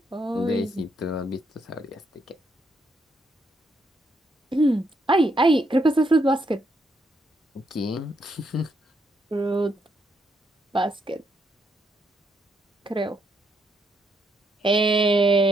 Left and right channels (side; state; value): both; normal; correlation 0.76